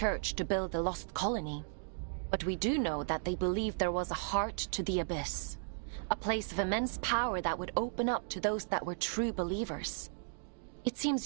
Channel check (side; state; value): left; silent; digital silence